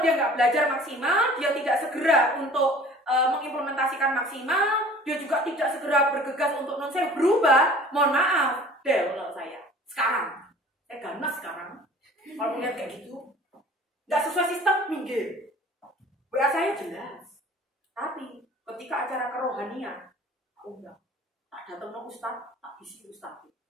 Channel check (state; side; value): normal; both; correlation 0.47